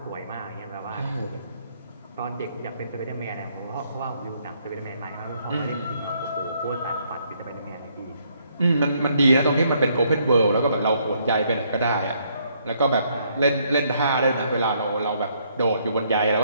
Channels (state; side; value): inverted; both; correlation -0.70